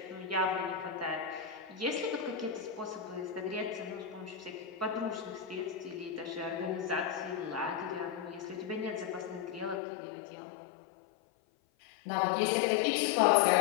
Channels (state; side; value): drops out; right; at 9.8 s